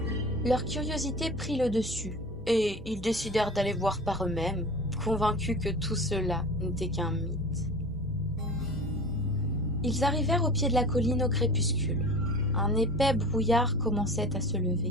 Leur curiosité prit le dessus, et ils décidèrent d'aller voir par eux-mêmes, convaincus que tout cela n'était qu'un mythe. Ils arrivèrent au pied de la colline au crépuscule. Un épais brouillard commençait à se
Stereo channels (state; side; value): normal; both; correlation 0.37